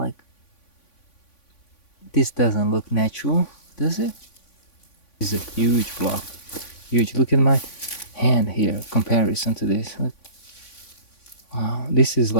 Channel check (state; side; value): late; right; 3.5 ms